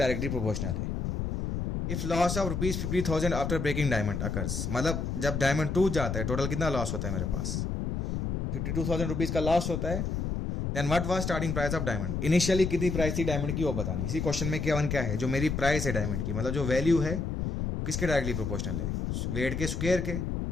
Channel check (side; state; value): left; noise; rumble, 2 dB below the sound